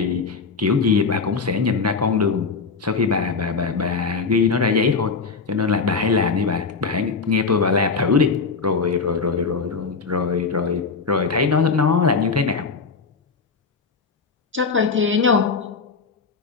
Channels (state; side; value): quieter; right; 4.8 dB